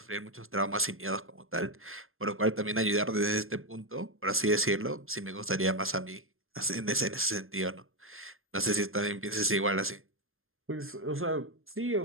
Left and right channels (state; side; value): late; left; 0.60 ms